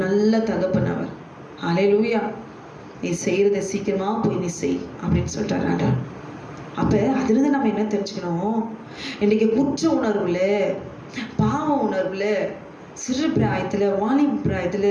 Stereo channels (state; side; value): identical; both; correlation 1.00